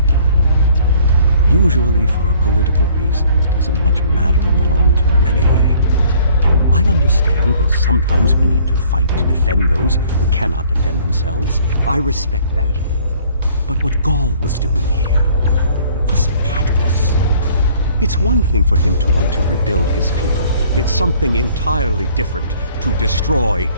Usually for a political reason that doesn't much matter in the long term anyway. I understand that sometimes we need to fight to defend those who cannot defend themselves. I respect that. But what Gaul was doing here was madness. It's one thing for him to want to rebuild his people. It's something entirely different to destroy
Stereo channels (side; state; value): both; inverted; correlation -0.57